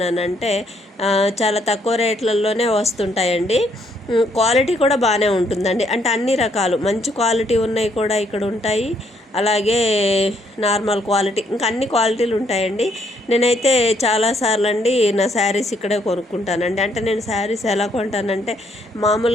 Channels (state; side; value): normal; both; correlation 0.71